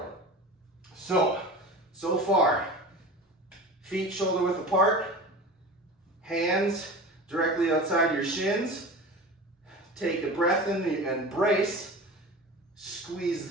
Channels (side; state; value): both; normal; correlation 0.34